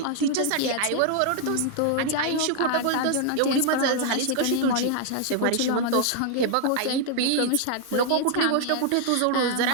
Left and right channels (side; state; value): both; different; correlation 0.00